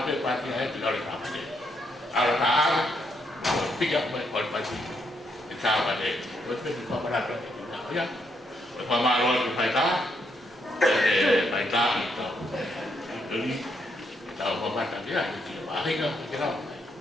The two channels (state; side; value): normal; both; correlation 0.76